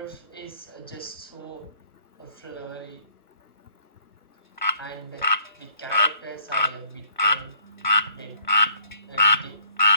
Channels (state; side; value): inverted; both; correlation -0.64